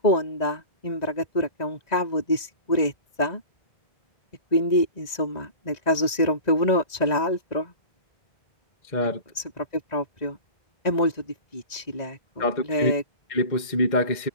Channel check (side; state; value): right; late; 1.9 ms